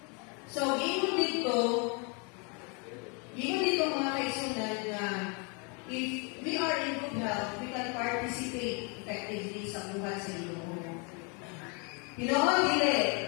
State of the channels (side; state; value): right; quieter; 33.9 dB